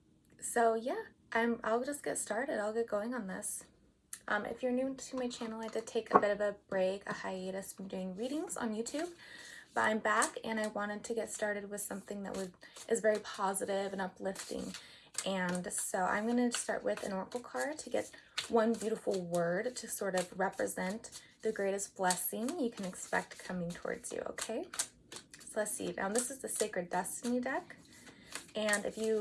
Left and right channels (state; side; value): identical; both; correlation 1.00